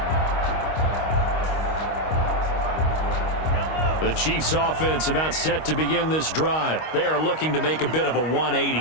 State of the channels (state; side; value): late; right; 25 ms